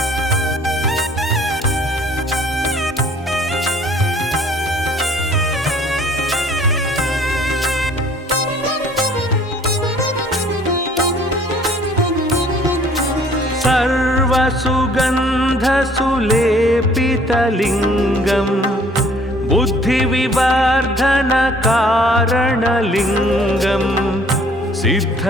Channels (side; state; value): both; normal; correlation 0.56